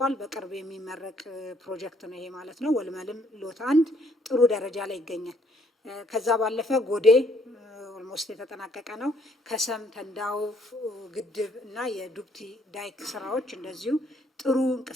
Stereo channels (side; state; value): both; normal; correlation 0.67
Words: በቅርብ የሚመረቅ ፕሮጀክት ነው ይሄ ማለት ነው። ወልመልም ሎት 1 ጥሩ ደረጃ ላይ ይገኛል። ከዛ ባለፈ ጎዴ ኦልሞስት የተጠናቀቀ ነው። ከሰም ተንዳው ግድብ እና የዱብቲ ዳይክ ስራዎች እንደዚሁ ጥሩ